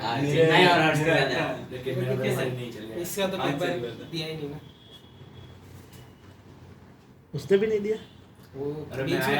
मेरे- नहीं और आर्ट्स का था। लेकिन मेरा वैसे नहीं चलेगा। इसका तो आज पेपर से ही दिया ही नहीं ना। उसने भी नहीं दिया। वो अरे बीच मैं में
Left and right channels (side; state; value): both; identical; correlation 1.00